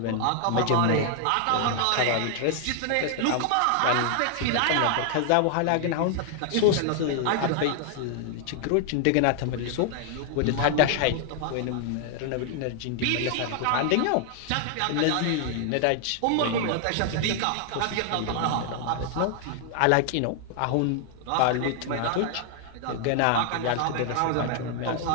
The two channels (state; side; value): different; both; correlation 0.00